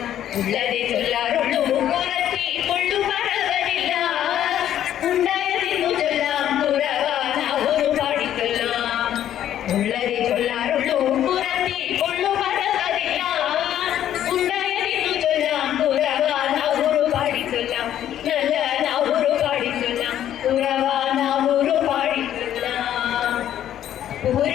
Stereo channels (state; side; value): quieter; right; 11.1 dB